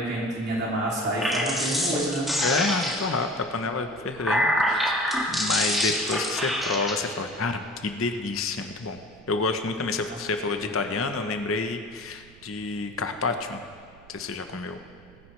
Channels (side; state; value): right; noise; rumble, 23 dB below the sound